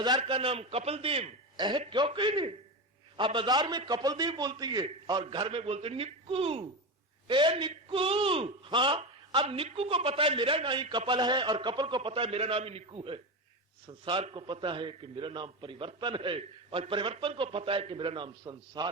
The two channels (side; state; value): both; normal; correlation 0.19